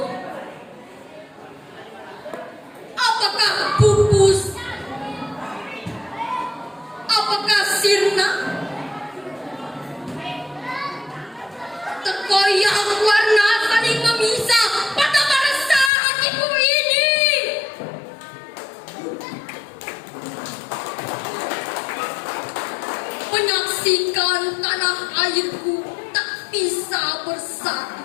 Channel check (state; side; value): drops out; right; at 15.9 s